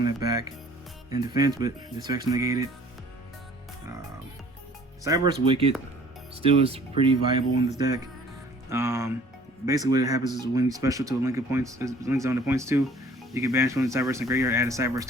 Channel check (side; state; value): both; normal; correlation 0.53